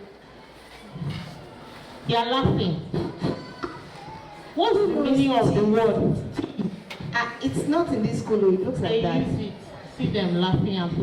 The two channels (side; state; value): both; identical; correlation 1.00